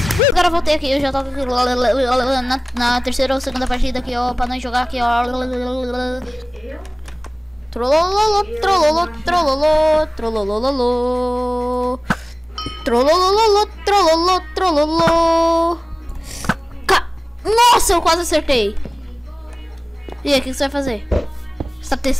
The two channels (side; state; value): both; normal; correlation 0.98